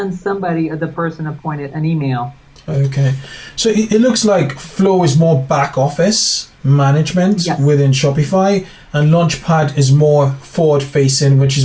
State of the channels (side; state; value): both; identical; correlation 1.00